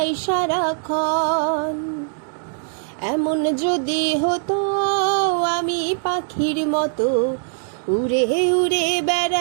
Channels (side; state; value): left; silent; digital silence